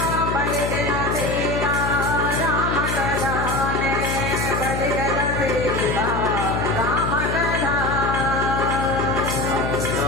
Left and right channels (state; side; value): noise; left; hum, 2 dB below the sound